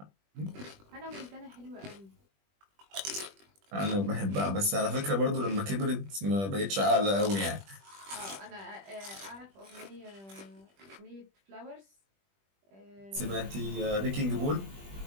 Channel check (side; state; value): left; late; 20 ms